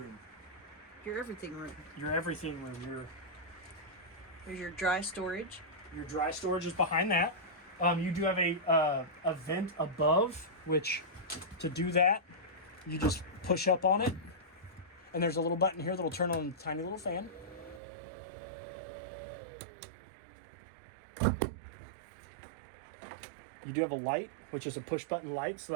Your everything room. Your everything room. There's your dry storage. Your dry storage is behind that. You do have a vent above, which to do that, you just push up on it, and there's a little button here that'll turn on a tiny little fan. You do have a light, which is a push button light, so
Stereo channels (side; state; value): left; drops out; at 17.8 s